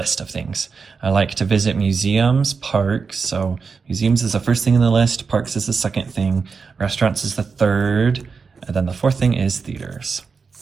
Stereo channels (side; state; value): left; quieter; 5.1 dB